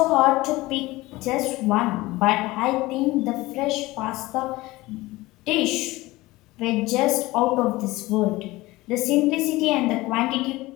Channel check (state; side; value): quieter; right; 19.6 dB